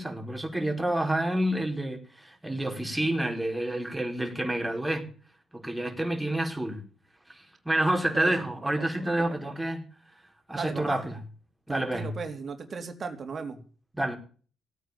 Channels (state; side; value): normal; both; correlation 0.95